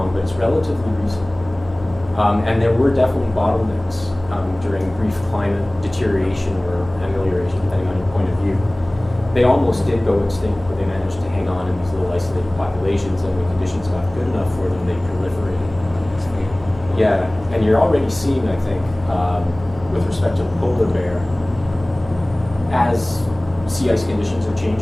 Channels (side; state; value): left; noise; hum, 18 dB below the sound